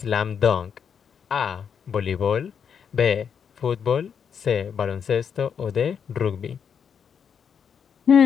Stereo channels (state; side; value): quieter; right; 7.2 dB